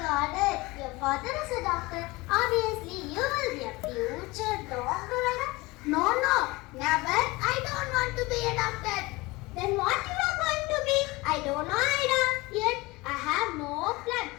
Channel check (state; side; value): quieter; right; 22.4 dB